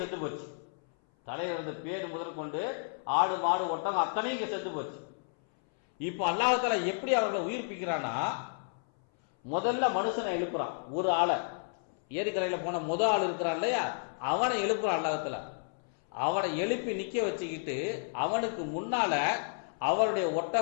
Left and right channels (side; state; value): right; silent; 57 dB below the other